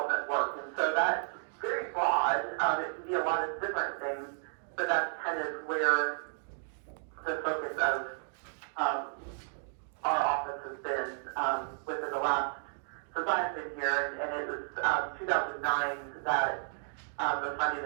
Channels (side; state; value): left; silent; digital silence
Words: work. And so that's very broad. It can be a lot of different things, but that's kind of where the focus of our office has been within the last, since I've been here, and it was 2009 that the funding